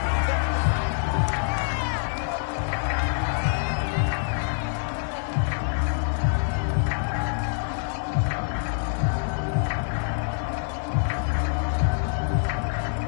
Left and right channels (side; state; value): right; silent; 61 dB below the other